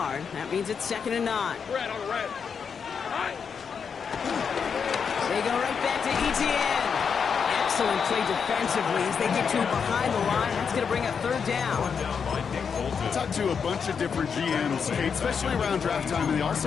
That means it's 2nd and 9. Red on red. They go right back to ETN. Excellent play defensively as they get to behind the line. That's going to bring a 3rd down. I talked to a bunch of different GMs, Kate, especially around draft time, and they all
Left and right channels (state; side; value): quieter; right; 6.4 dB